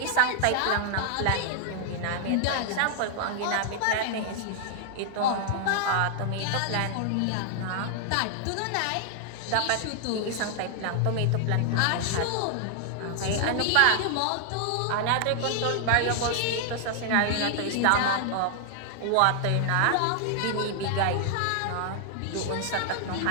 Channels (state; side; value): different; both; correlation -0.01